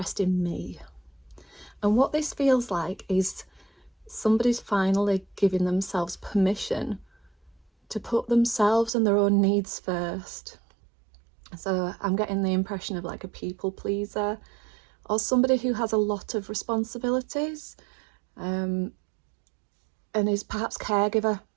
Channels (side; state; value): left; drops out; at 8.9 s